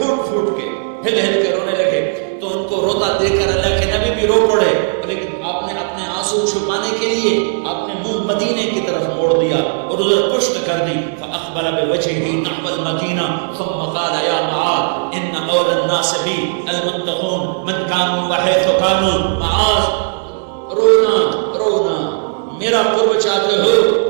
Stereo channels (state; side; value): silent; left; digital silence